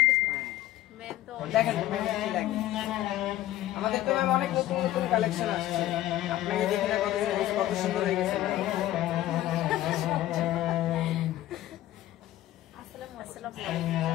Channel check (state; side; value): quieter; right; 14.3 dB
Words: দেখেন কি লাগে, আমাদের তো ম্যাম অনেক নতুন নতুন কালেকশন আসছে, আপনাকে দেখে না কত সুন্দর হয়ে গেছে।